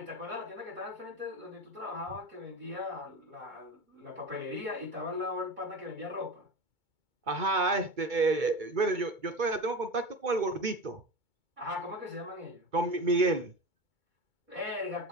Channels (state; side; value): late; left; 2.2 ms